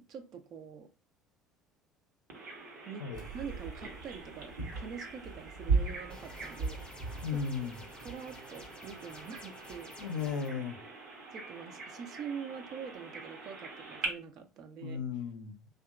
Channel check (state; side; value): normal; both; correlation 0.36